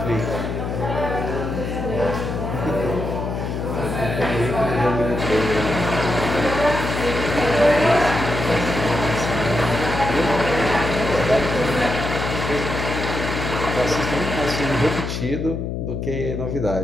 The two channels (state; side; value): noise; left; hum, 4 dB below the sound